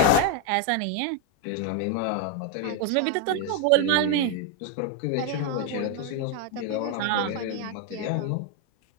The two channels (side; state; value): both; different; correlation 0.01